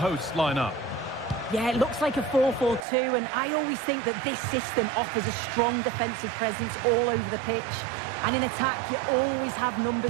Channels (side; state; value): left; drops out; at 2.8 s